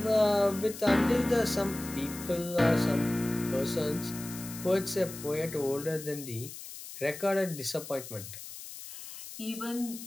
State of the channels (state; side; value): noise; left; hiss, 12 dB below the sound